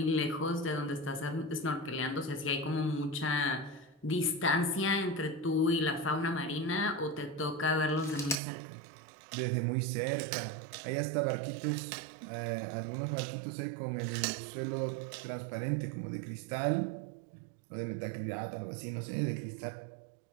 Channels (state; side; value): drops out; left; at 8.4 s